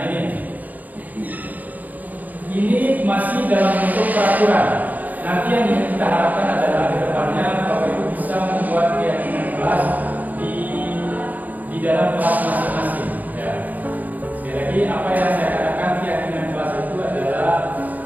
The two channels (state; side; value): late; left; 0.081 ms